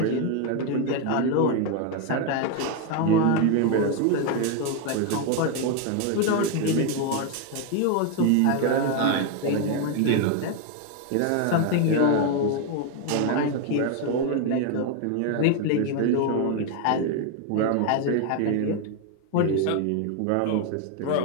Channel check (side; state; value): both; different; correlation 0.01